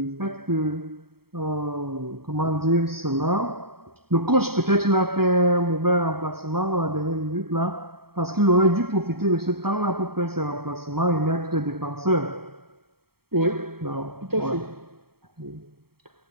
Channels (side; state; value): left; late; 0.95 ms